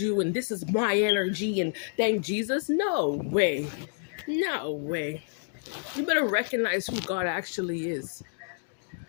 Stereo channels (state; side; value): silent; right; digital silence